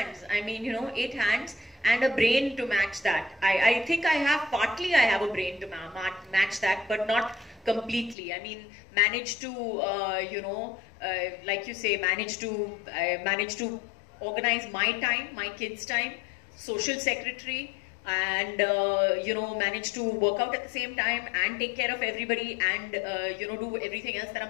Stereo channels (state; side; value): drops out; right; at 8.2 s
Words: I mean, 8 hands and a brain to match that. I think I have a brain to match that, but not completely. I mean, manage to, like you say, manage to organize my time, my kids' time, social secretary, and manage to work out at the same time and take care of everybody and do everything else that I'm